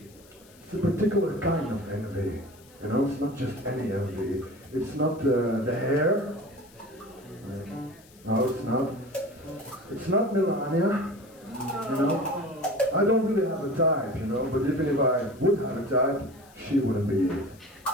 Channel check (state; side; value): noise; left; hiss, 26 dB below the sound